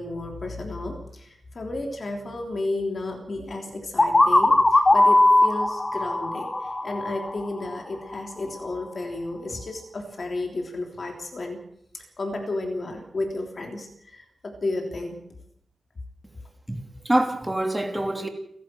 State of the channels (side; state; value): both; normal; correlation 0.97